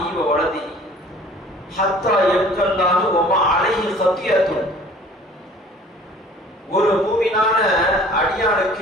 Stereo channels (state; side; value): normal; both; correlation 0.50